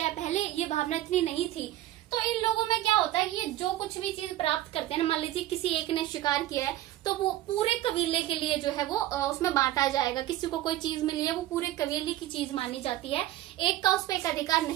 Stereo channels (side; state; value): left; quieter; 14.4 dB